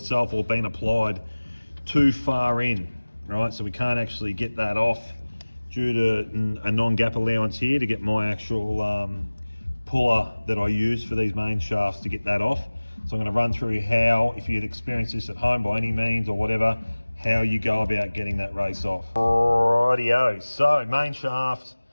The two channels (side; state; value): both; inverted; correlation -1.00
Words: or been applied too far in, right? So we can't actually get that off due to a non-gap allowance here to get my actual puller that I use for these main shafts to get that off. So I'm going to run through how, if you'd experienced this at home by any means or whatever, how you go about getting that race off. Rightio, so main shaft,